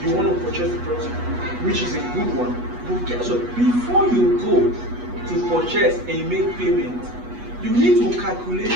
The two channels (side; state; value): left; late; 8.2 ms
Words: you want to purchase the property, which is a good one. But guess what? Before you go to purchase and make payment, you need to calculate